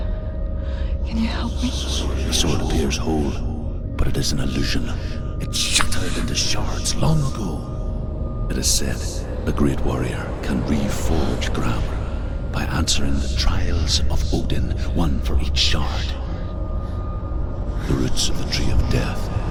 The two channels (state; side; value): identical; both; correlation 1.00